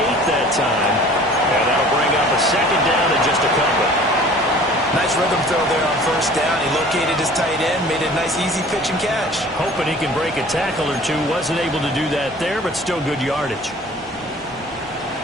8 that time. And that'll bring up a 2nd down and just a couple. Nice rhythm throw there on 1st down. He located his tight end, made a nice easy pitch and catch. Hoping he can break a tackle or two. Wasn't able to do that there, but still good yardage.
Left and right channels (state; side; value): normal; both; correlation 0.48